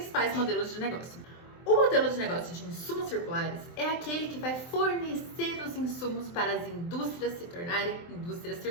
modelos de negócio. O modelo de negócio de insumos circulares é aquele que vai fornecer os insumos para as indústrias se tornarem indústrias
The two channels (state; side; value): late; right; 23 ms